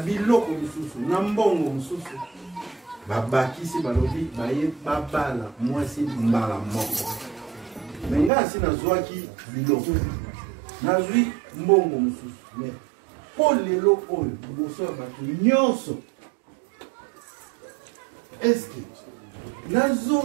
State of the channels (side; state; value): left; drops out; at 8.3 s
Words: lisusu na mbongo mosusu babakisi balobi baye babala mwasi mbala moko me nga asi nazwaki biloko nazwi mbongo mosusu me mpo lelo oyo liboso ya bato nyonso eske